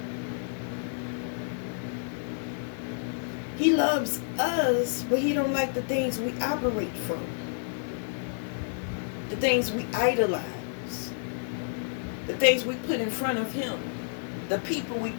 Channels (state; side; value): silent; right; 58 dB below the other